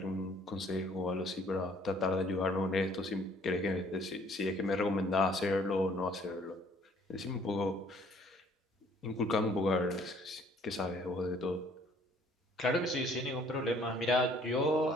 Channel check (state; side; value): normal; both; correlation 0.59